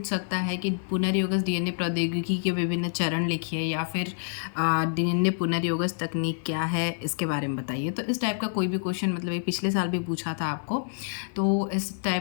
सकता है कि पुनर्योगज डीएनए प्रौद्योगिकी के विभिन्न चरण लिखिए या फिर डीएनए पुनर्योगज तकनीक क्या है इसके बारे में बताइए। तो इस टाइप का कोई भी क्वेश्चन, मतलब ये पिछले साल भी पूछा था आपको, तो इस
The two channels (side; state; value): right; silent; 60 dB below the other